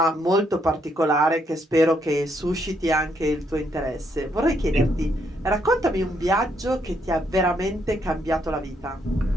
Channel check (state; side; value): normal; both; correlation 0.74